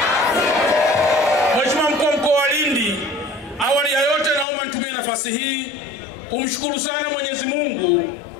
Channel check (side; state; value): right; drops out; at 4.5 s